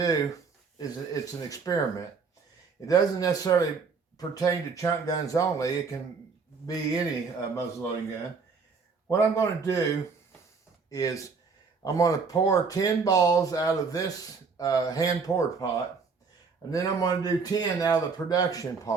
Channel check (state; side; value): quieter; left; 5.0 dB